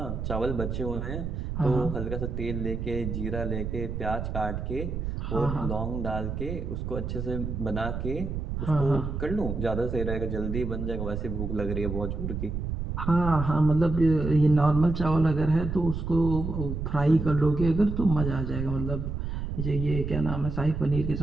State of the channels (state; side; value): noise; right; rumble, 4 dB below the sound